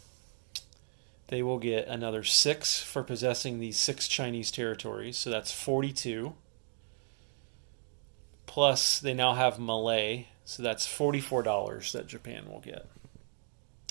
they will get another 6 for possessing these 6 Chinese territories. So that's 42. Plus, they now have Malay. So that's $44 that Japan will get.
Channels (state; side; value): silent; left; digital silence